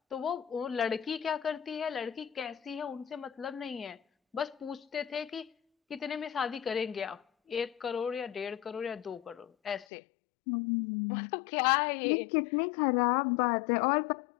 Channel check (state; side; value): drops out; right; at 9.9 s